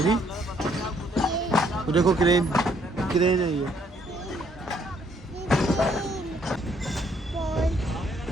भी तो देखो क्रेन है ये।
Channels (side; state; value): both; normal; correlation 0.67